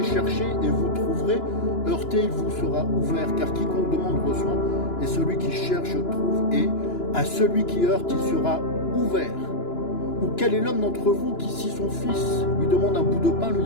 cherchez, et vous trouverez, heurtez, il vous sera ouvert, car quiconque demande reçoit, et celui qui cherche trouve, et à celui qui heurte, il sera ouvert. Ou quel est l'homme d'entre vous qui, si son fils lui demande un bout de pain, lui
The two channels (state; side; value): late; right; 2.9 ms